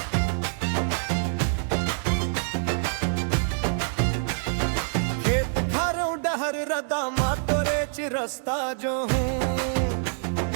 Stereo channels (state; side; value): silent; left; digital silence